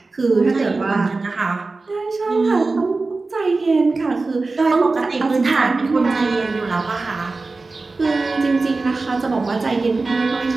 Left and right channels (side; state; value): left; quieter; 3.7 dB